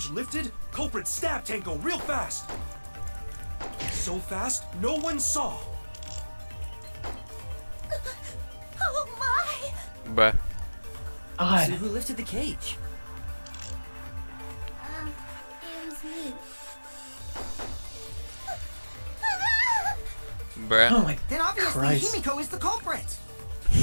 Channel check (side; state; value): both; inverted; correlation -1.00